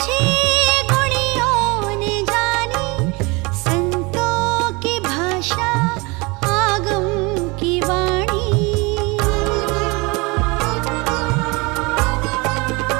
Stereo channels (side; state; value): left; quieter; 26.5 dB